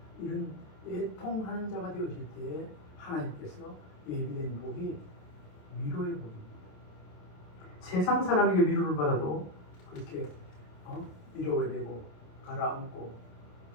이런 애통하는 자가 되어질 때에 하나님께서 예비된 복이 위로의 복입니다. 세상 사람에게 위로를 받아도 그렇게 위로가 되고 가라앉고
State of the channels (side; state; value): right; late; 27 ms